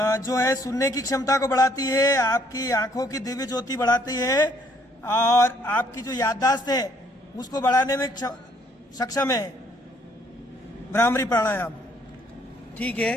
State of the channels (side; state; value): both; normal; correlation 0.65